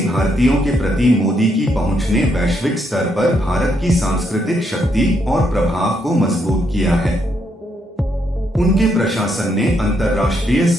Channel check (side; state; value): both; normal; correlation 0.76